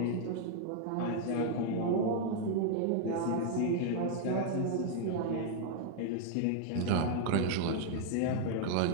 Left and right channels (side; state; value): both; different; correlation 0.00